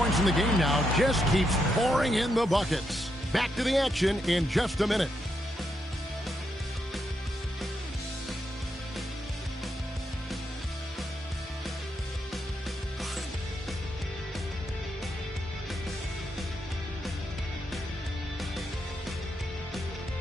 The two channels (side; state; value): both; normal; correlation 0.81